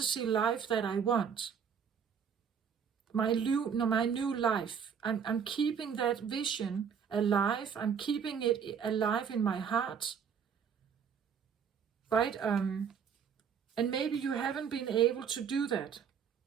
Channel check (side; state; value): left; quieter; 7.2 dB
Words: life that I want. My new life. I'm keeping that vision alive. I'm keeping it alive in my heart. Right? And maybe you haven't been able to do that.